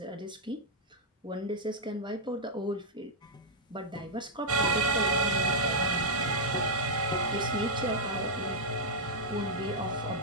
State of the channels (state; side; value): normal; both; correlation -0.05